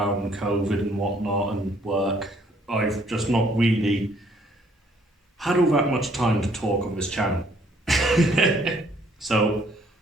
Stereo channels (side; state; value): both; normal; correlation 0.63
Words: COVID and whatnot, and work. I've just not really had all that much time to talk on this channel. So,